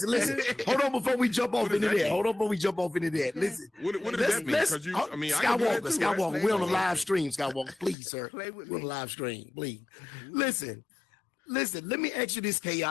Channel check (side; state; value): right; drops out; at 8.0 s